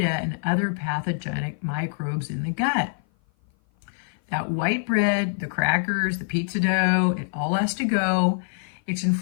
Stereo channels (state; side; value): silent; right; 56 dB below the other